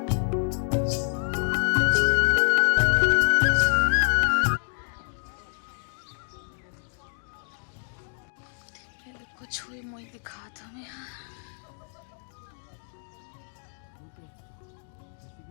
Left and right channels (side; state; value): right; silent; 60 dB below the other